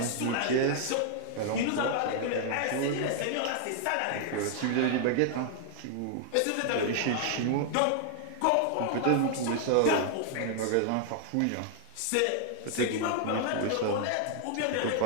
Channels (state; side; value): different; both; correlation 0.00